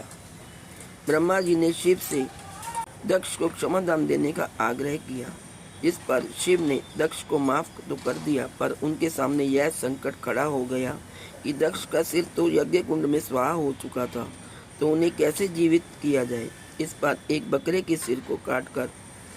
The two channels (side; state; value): both; identical; correlation 1.00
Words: ब्रह्मा जी ने शिव से दक्ष को क्षमादान देने का आग्रह किया, जिस पर शिव ने दक्ष को माफ तो कर दिया, पर उनके सामने यह संकट खड़ा हो गया कि दक्ष का सिर तो यज्ञ कुंड में स्वाहा हो चुका था, तो उन्हें कैसे जीवित किया जाए। इस पर एक बकरे के सिर को काटकर